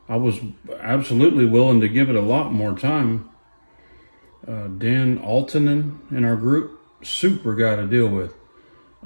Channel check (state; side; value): inverted; both; correlation -1.00